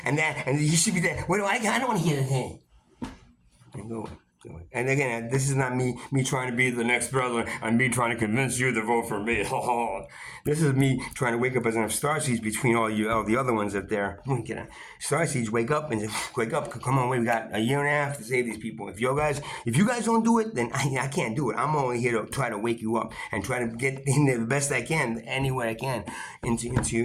and that, and he should be that. What do I don't want to hear that. And go away. And again, this is not me trying to be the next brother and me trying to convince you to vote for me. This is me trying to wake up as enough starseeds between all the other ones up there. Starseeds, wake up. Come on, we got a year and a half to save these people. If you guys don't do it, then I can't do it. I'm only here to try to wake you up and try to get in there the best I can, any way I can, into.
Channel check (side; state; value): both; identical; correlation 1.00